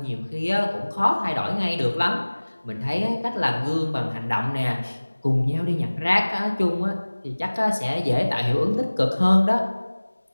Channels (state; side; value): inverted; both; correlation -1.00